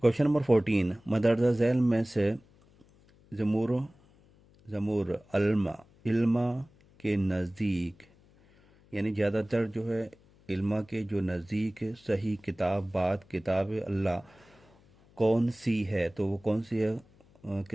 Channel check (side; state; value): left; noise; hum, 29 dB below the sound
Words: नंबर 14, मदरजा झैल में से जमूर जमूर अल्मा इल्मा के नज़दीक, यानी ज़्यादातर जो है इल्मा के जो नज़दीक सही किताब बात किताब अल्लाह कौन सी है? तो वो कौन सी है